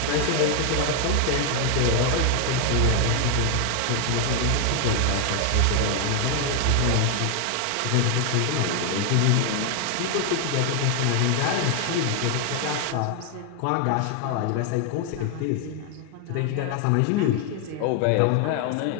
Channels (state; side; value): different; both; correlation 0.00